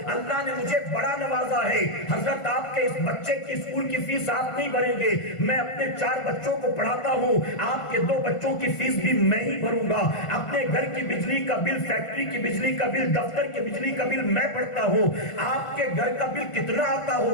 اللہ نے مجھے بڑا نوازا ہے، حضرت آپ کے اس بچے کی اسکول کی فیس آپ نہیں بھریں گے، میں اپنے 4 بچوں کو پڑھاتا ہوں، آپ کے 2 بچوں کی فیس بھی میں ہی بھروں گا، اپنے گھر کی بجلی کا بل، فیکٹری کی بجلی کا بل، دفتر کی بجلی کا بل میں پڑھتا ہوں، آپ کے گھر کا بل کتنا آتا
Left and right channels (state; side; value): late; right; 1.5 ms